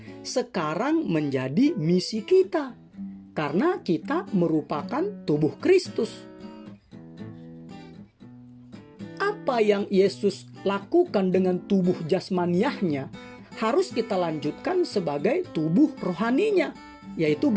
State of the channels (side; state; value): both; identical; correlation 1.00